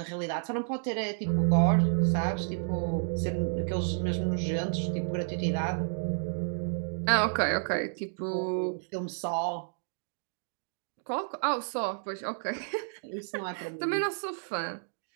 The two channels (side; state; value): left; silent; digital silence